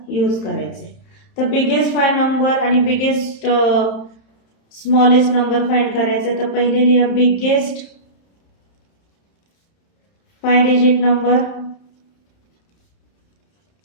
यूज करायचे. तर बिगेस्ट 5 नंबर आणि बिगेस्ट स्मॉलेस्ट नंबर फाइंड करायचे. तर पहिले लिहा बिगेस्ट 5 डिजिट नंबर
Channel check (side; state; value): right; late; 31 ms